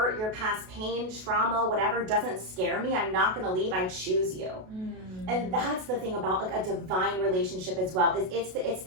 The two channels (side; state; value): left; late; 32 ms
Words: your past pain, trauma, whatever doesn't scare me. I'm not going to leave. I choose you. And that's the thing about like a divine relationship as well, is it's